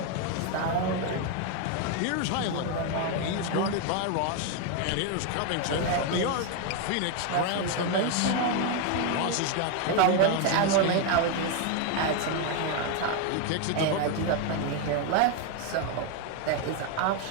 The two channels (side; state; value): both; different; correlation 0.01